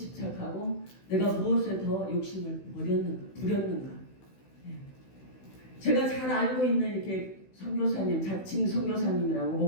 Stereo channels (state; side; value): late; right; 16 ms